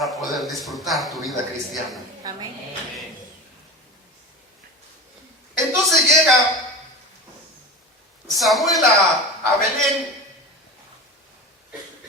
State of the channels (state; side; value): normal; both; correlation 0.29